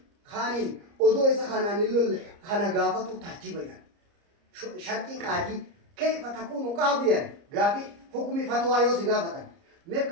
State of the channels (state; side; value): late; left; 30 ms